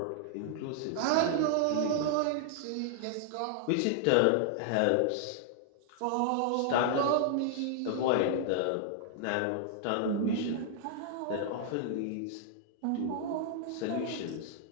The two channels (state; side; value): different; both; correlation -0.01